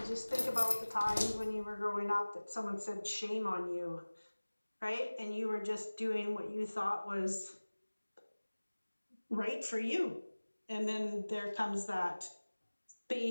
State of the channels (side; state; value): both; inverted; correlation -1.00